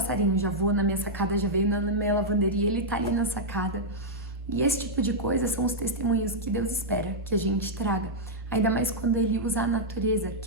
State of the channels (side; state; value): both; normal; correlation -0.06